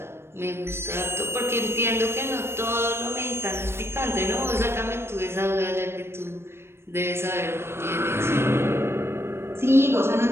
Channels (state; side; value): late; left; 0.12 ms